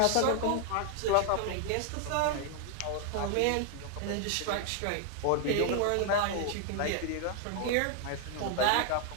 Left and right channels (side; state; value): both; different; correlation 0.00